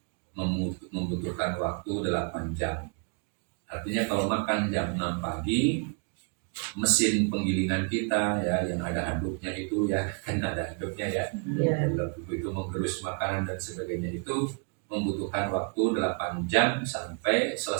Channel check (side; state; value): left; quieter; 38.2 dB